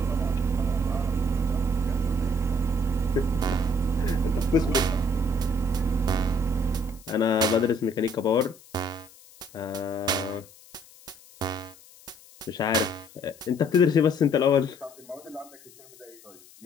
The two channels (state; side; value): noise; left; hiss, 23 dB below the sound